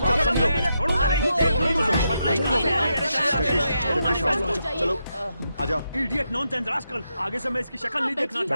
समझो। छोड़ूंगा नहीं। चलो आ जाओ। Idiot, nonsense, rascal. आगे से मैं इसकी शक्ल नहीं देखना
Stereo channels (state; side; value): inverted; both; correlation -0.84